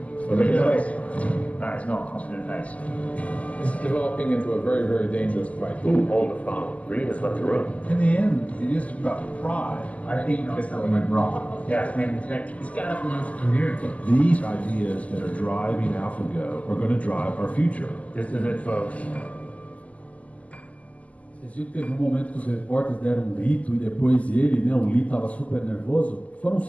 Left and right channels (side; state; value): right; late; 0.070 ms